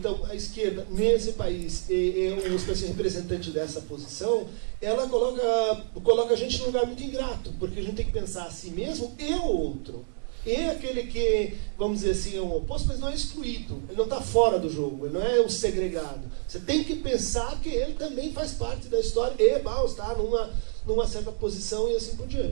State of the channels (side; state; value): left; silent; 59 dB below the other